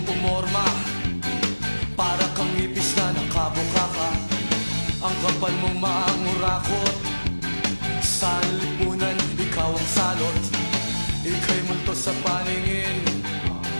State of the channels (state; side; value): inverted; both; correlation -1.00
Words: pumorma, para kang ipis na nakabukaka. Ang kapal mong maangurakot, sa lipunan ikaw ang salot. Ika'y multo sa paningin,